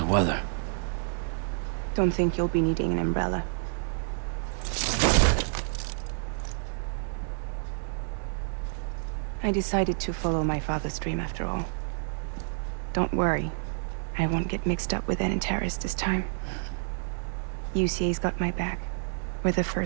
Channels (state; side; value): silent; left; 59 dB below the other